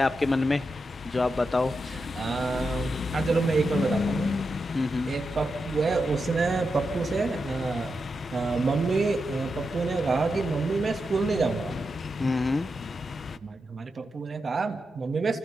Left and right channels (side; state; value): both; normal; correlation 0.87